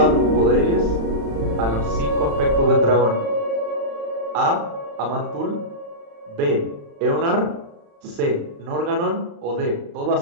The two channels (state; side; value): late; left; 35 ms